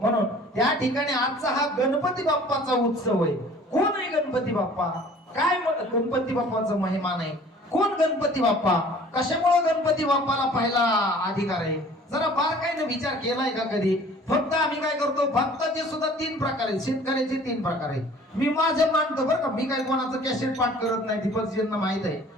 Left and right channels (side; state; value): both; normal; correlation 0.50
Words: त्या ठिकाणी आजचा हा गणपती बाप्पाचा उत्सव आहे. कोण आहे गणपती बाप्पा? काय गणपती बाप्पाचा महिमा नाही? कोण गणपती बाप्पा? कशामुळे गणपती बाप्पाला पहिला अधिकार आहे? जरा बारकाईने विचार केलाय का कधी? फक्त आम्ही काय करतो, भक्ताचे सुद्धा 3 प्रकार आहेत, शेतकऱ्याचे 3 प्रकार आहेत. मी माझे मानतो बरं का, मी काय कोणाचं कॅसेट पाठ करत नाही, दीपकजींना माहित आहे.